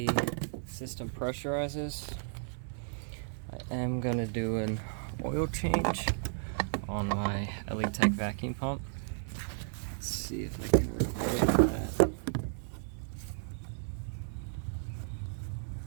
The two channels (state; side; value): silent; left; 55 dB below the other